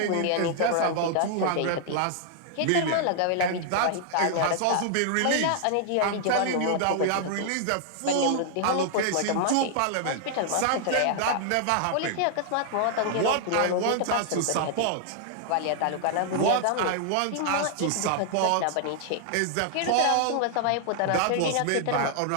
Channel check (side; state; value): both; different; correlation -0.01